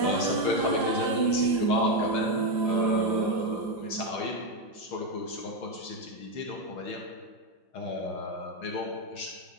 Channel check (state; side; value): late; right; 5.1 ms